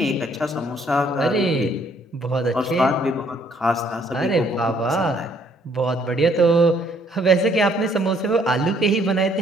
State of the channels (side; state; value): both; normal; correlation 0.64